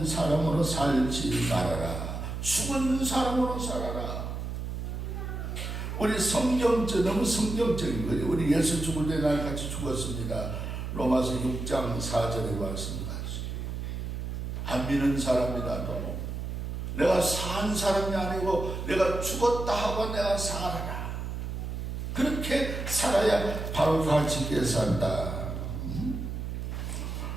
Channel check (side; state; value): right; noise; hum, 5 dB below the sound